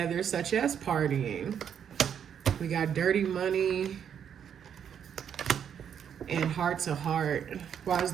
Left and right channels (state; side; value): quieter; left; 8.3 dB